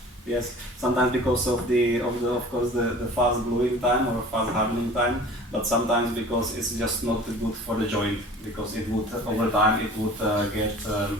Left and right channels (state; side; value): normal; both; correlation 0.44